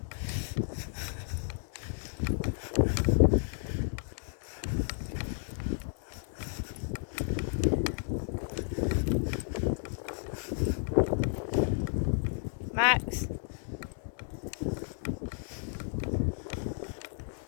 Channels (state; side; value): silent; right; 56 dB below the other